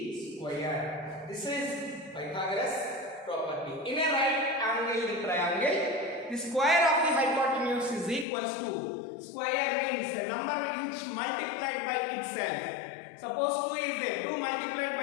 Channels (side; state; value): right; drops out; at 8.2 s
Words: square. This is Pythagoras property. In a right angle triangle, the square of the hypotenuse is equals to, square means a number which multiplied by itself. Suppose 2 is there, 2 multiplied